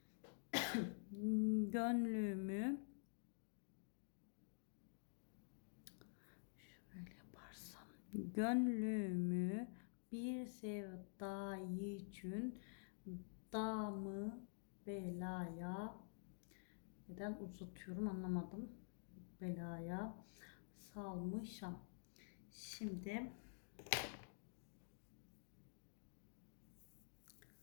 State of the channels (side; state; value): right; silent; digital silence